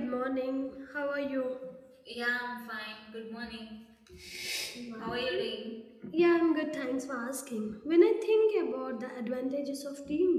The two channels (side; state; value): both; identical; correlation 1.00